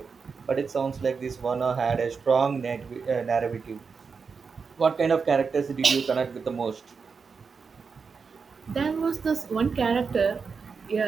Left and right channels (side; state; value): left; quieter; 5.3 dB